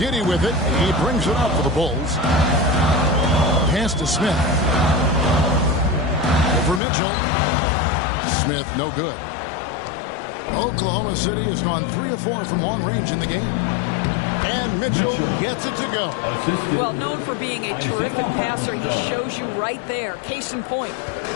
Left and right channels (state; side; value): drops out; right; at 6.8 s